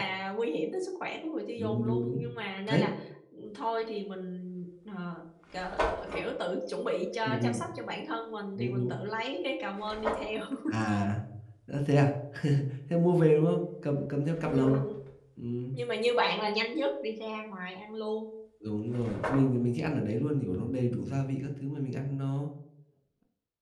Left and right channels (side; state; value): both; identical; correlation 1.00